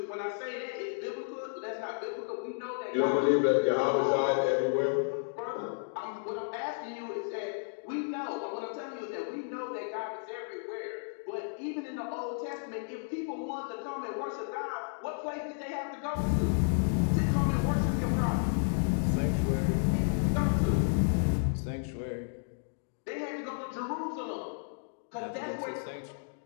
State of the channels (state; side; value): silent; right; digital silence